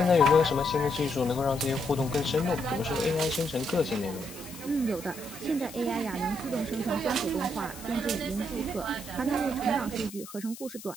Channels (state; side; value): noise; left; hiss, 15 dB below the sound